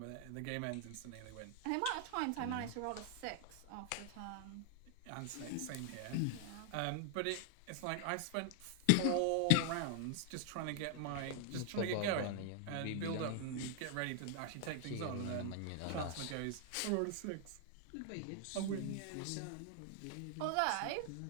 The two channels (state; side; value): different; both; correlation 0.00